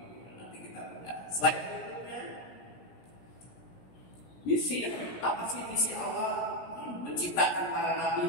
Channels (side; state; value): right; late; 17 ms